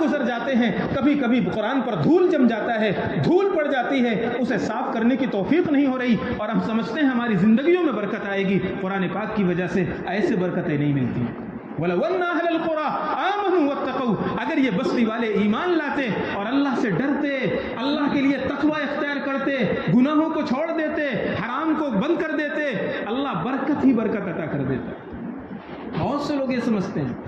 گزر جاتے ہیں, کبھی کبھی قرآن پر دھول جم جاتا ہے, دھول پڑ جاتی ہے, اسے صاف کرنے کی توفیق نہیں ہو رہی, اور ہم سمجھتے ہیں ہماری زندگیوں میں برکت آئے گی. قرآن پاک کی وجہ سے ایسے برکتیں نہیں ملتی. وَلَوْ أَنَّ أَهْلَ الْقُرَىٰ آمَنُوا وَاتَّقَوْا, اگر یہ بستی والے ایمان لاتے اور اللہ سے ڈرتے, اللہ کے لیے تقوی اختیار کرتے, گناہوں کو چھوڑ دیتے, حرام کو بند کر دیتے, اللہ برکت ہی برکت عطا کر دیتا. بہت سے لوگ یہ سمجھتے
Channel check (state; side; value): identical; both; correlation 1.00